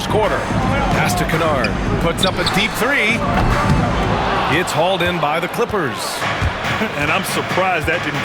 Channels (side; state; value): both; identical; correlation 1.00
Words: quarter. Pass to Kennard. Puts up a deep 3. It's hauled in by the Clippers. And I'm surprised that